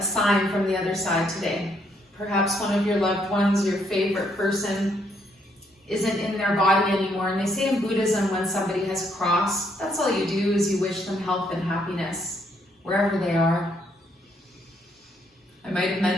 sign from the other side today. Perhaps one of your loved ones, your favorite person, isn't in their body anymore. And they say in Buddhism, when somebody has crossed, that's all you do is you wish them health and happiness, wherever they are. I might have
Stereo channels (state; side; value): normal; both; correlation 0.72